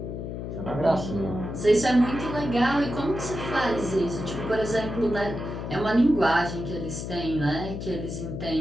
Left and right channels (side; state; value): left; noise; hum, 6 dB below the sound